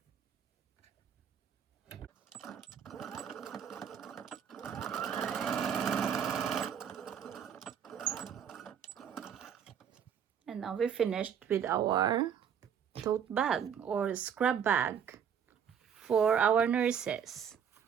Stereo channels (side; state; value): left; quieter; 8.0 dB